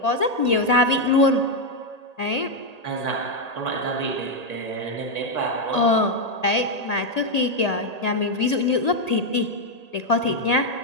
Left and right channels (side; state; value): right; late; 1.8 ms